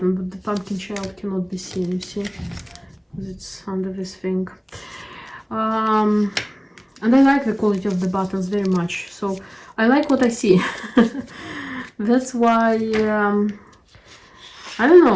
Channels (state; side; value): identical; both; correlation 1.00